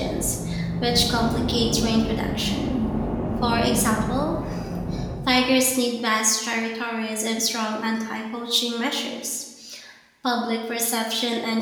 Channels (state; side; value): identical; both; correlation 1.00